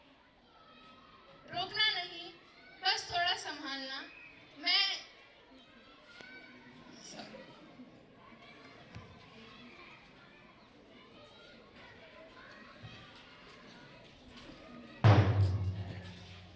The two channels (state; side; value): identical; both; correlation 1.00